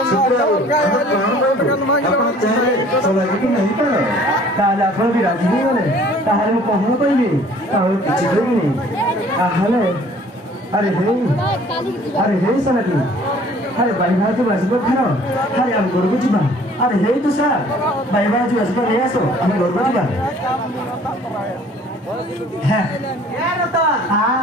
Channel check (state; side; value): normal; both; correlation 0.53